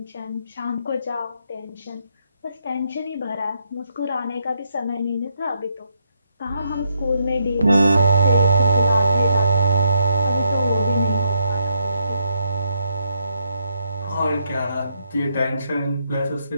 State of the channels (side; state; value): both; inverted; correlation -0.77